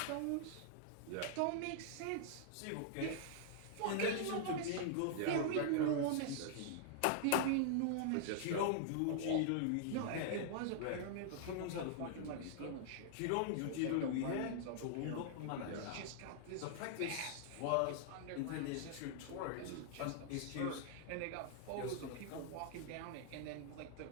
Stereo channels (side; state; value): both; different; correlation -0.01